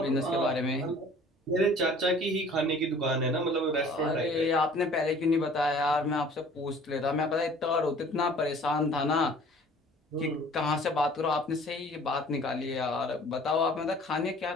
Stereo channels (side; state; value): both; normal; correlation 0.50